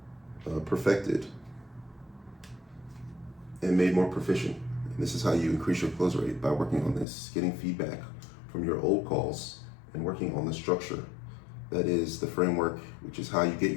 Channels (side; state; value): right; drops out; at 7.1 s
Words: perfected, and made more proficient. And this is how you increase your close rate, by working on this, getting feedback from your old calls and working on the structure. That is the framework, which is how you get